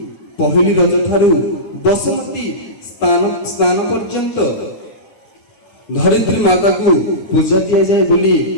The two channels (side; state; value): right; late; 9.8 ms